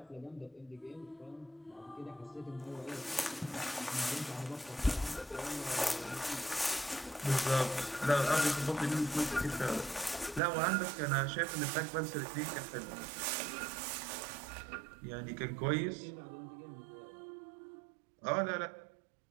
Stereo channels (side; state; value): left; drops out; at 10.4 s